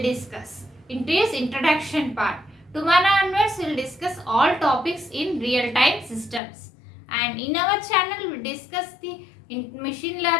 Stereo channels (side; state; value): right; drops out; at 6.4 s